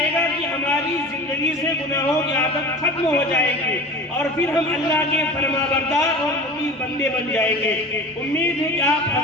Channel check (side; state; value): both; normal; correlation 0.35